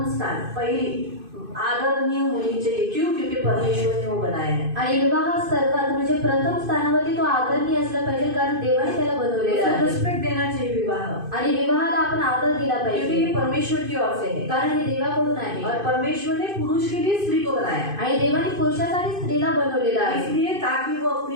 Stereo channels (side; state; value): left; late; 2.5 ms